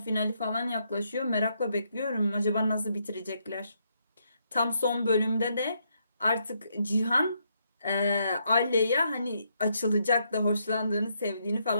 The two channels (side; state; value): both; inverted; correlation -0.76